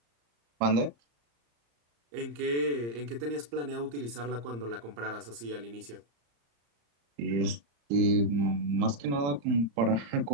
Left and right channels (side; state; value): left; late; 34 ms